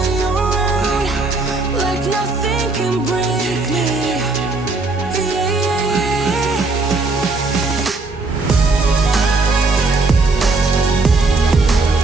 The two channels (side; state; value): left; quieter; 3.6 dB